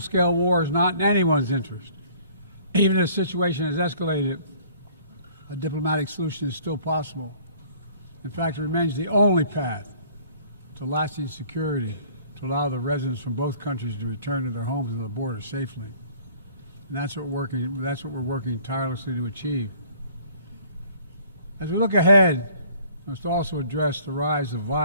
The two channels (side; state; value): both; inverted; correlation -0.54